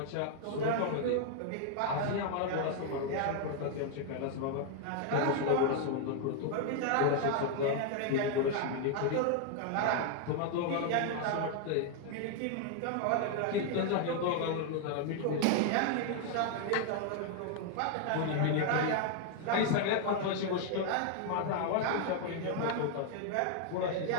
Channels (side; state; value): both; different; correlation 0.00